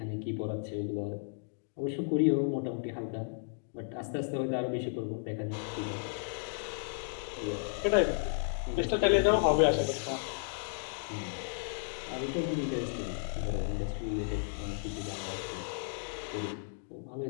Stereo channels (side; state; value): right; silent; digital silence